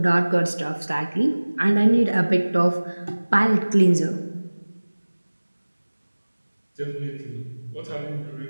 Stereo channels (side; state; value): both; inverted; correlation -1.00